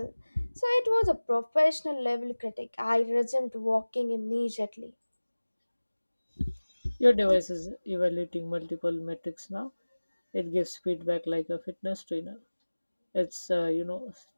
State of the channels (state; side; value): inverted; both; correlation -1.00